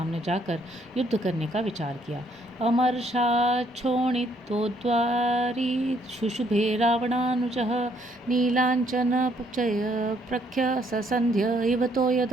जाकर युद्ध करने का विचार किया। अमर्षाच्छोणितोद्वारी शुशुभे रावणानुजः नीलाञ्चनपचय प्रख्य ससंध्य इव तो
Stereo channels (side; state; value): both; normal; correlation 0.68